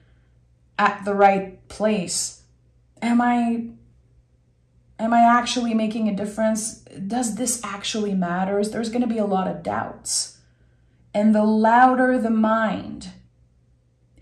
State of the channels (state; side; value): identical; both; correlation 1.00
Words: at the right place. Am I actually making a difference? Does this actually matter? There's going to be a lot of doubts. And the louder the mind,